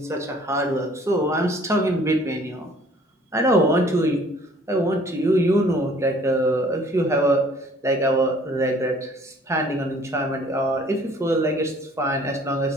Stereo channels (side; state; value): both; normal; correlation 0.55